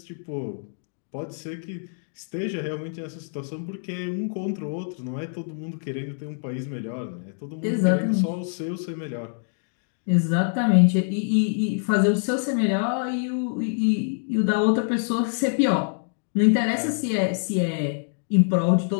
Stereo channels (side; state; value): right; silent; digital silence